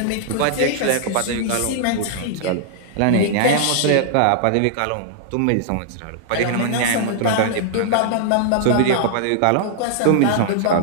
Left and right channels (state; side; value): different; both; correlation -0.01